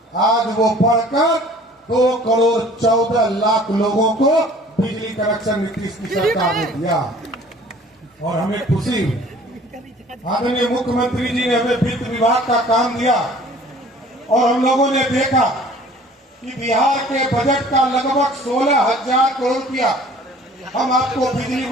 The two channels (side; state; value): both; normal; correlation 0.50